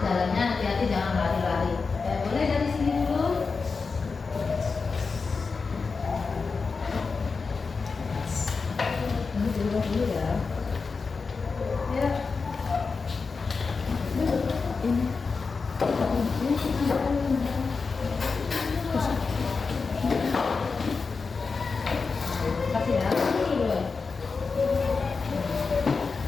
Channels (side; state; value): right; quieter; 4.7 dB